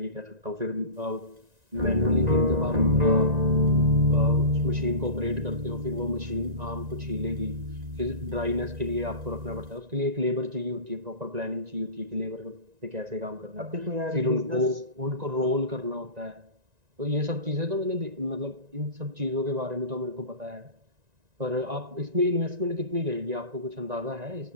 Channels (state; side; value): late; left; 1.9 ms